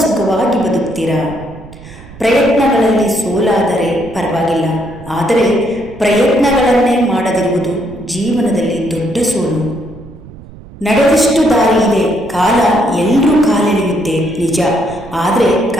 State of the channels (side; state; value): right; noise; rumble, 18 dB below the sound